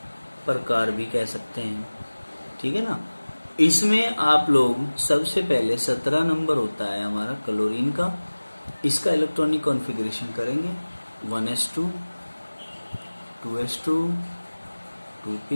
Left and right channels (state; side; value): inverted; both; correlation -1.00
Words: प्रकार भी कह सकते हैं, ठीक है ना। इसमें आप लोग सबसे पहले 17 नंबर होता है हमारा क्लोरीन का। इसका इलेक्ट्रॉनिक कॉन्फ़िगरेशन करेंगे 1s2, 2s2,